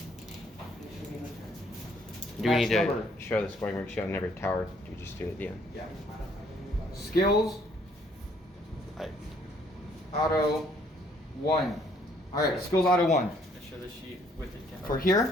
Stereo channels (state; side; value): normal; both; correlation 0.64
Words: Do we need to Number. show the scoring worksheet on every tower? Do we just do it at the end? Yeah. Skills. Auto 1. All right, skills auto 1. I show the sheet with the tower. For